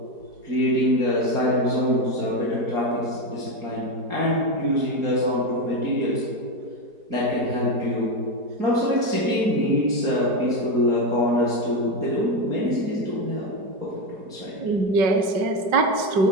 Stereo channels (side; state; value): left; late; 4.7 ms